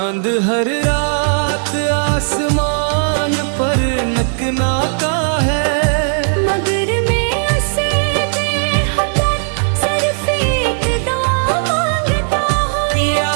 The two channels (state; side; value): silent; left; digital silence